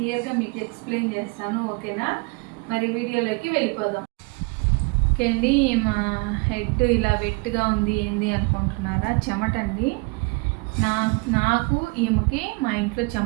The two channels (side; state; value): left; quieter; 29.1 dB